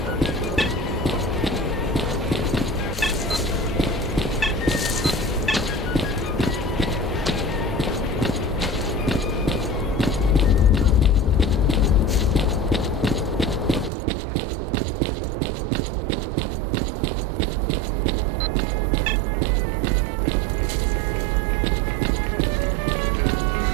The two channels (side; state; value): left; drops out; at 13.9 s